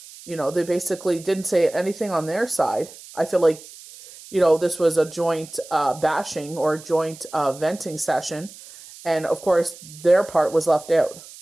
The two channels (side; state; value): right; noise; hiss, 18 dB below the sound